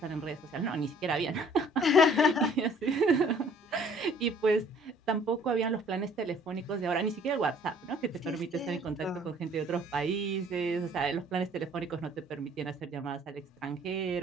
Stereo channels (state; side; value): normal; both; correlation 0.56